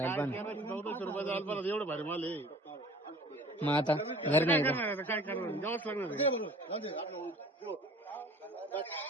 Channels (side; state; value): both; normal; correlation 0.47